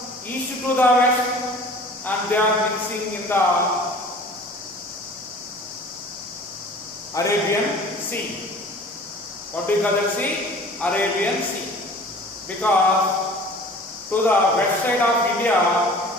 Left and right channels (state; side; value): normal; both; correlation 0.45